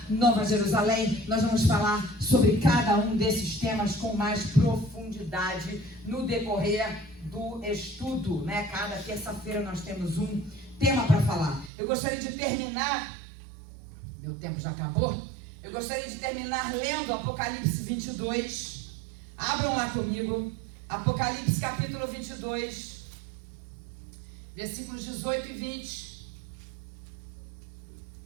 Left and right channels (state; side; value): drops out; left; at 11.7 s